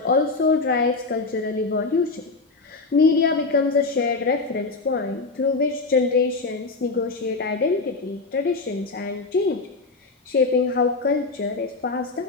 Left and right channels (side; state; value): right; quieter; 3.8 dB